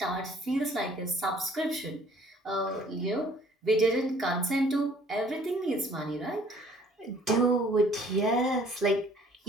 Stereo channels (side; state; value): both; normal; correlation 0.57